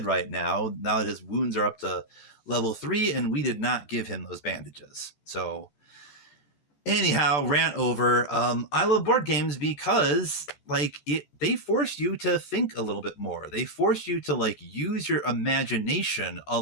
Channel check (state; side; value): late; right; 14 ms